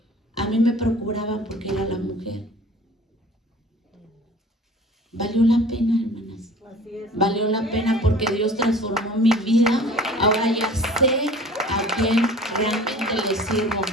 A mí me procuraban porque era la mujer. Valió la pena, hermanas. Valió la pena porque Dios transformó mi vida. Ahora ya sé a quién realmente le sirvo.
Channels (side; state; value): both; normal; correlation 0.45